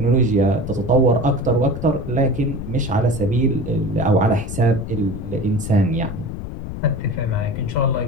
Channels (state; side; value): noise; left; rumble, 8 dB below the sound